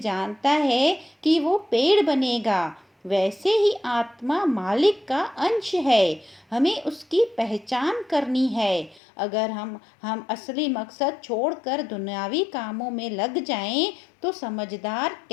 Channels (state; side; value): drops out; right; at 9.0 s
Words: जानता है कि वो पेड़ बनेगा, वैसे ही आत्मा मालिक का अंश है। हमें उसकी पहचान करनी है। अगर हम असली मकसद छोड़कर दुनियावी कामों में लग जाएं, तो समझदार